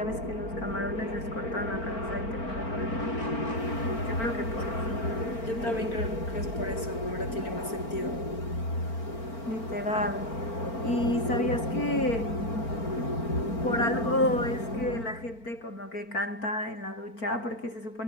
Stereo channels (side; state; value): right; late; 4.4 ms